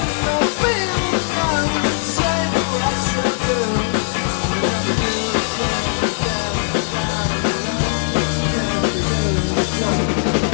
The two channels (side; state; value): right; silent; 57 dB below the other